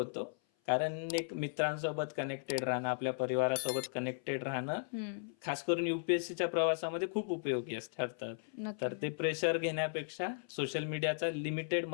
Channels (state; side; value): silent; right; 54 dB below the other